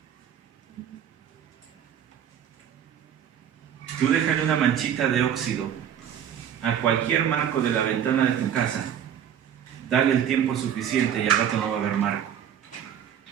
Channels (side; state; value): left; quieter; 9.2 dB